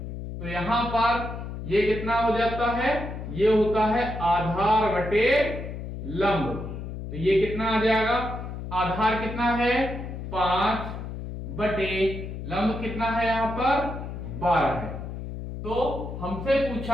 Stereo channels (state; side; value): noise; left; hum, 8 dB below the sound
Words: तो यहां पर ये कितना हो जाता है, ये होता है आधार बटे लंब। तो ये कितना आ जाएगा, आधार कितना है 5 बटे लंब कितना है यहां पर 12 है। तो हमसे